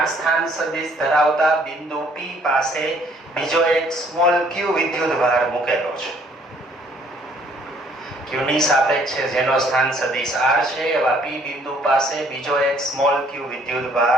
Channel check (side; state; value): both; normal; correlation 0.62